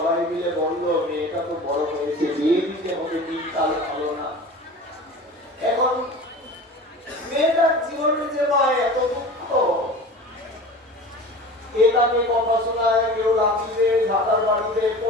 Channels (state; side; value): normal; both; correlation 0.36